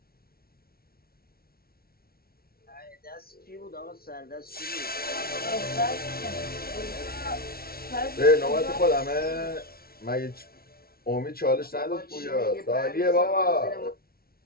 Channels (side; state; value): right; late; 0.44 ms